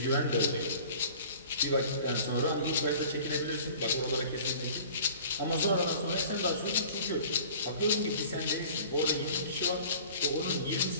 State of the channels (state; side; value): inverted; both; correlation -0.46